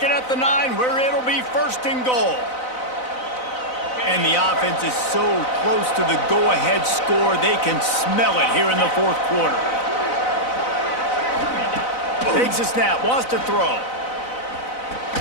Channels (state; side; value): late; right; 4.0 ms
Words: it at the 9 where it'll be first and goal. And the offense is so close to the go-ahead score, they can smell it here in the fourth quarter. Takes a snap, wants to throw.